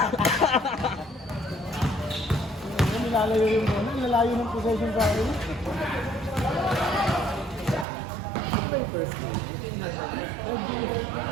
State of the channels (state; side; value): drops out; left; at 7.9 s